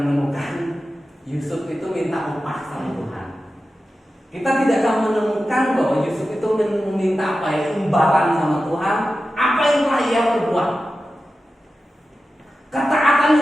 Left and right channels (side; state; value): both; normal; correlation 0.93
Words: menemukan Yusuf itu minta upah sama Tuhan. Kita tidak akan menemukan bahwa Yusuf itu meminta apa ya, imbalan sama Tuhan, apa yang telah ia perbuat. Ketaatan